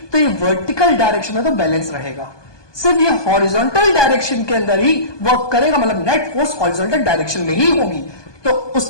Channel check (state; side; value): late; right; 1.2 ms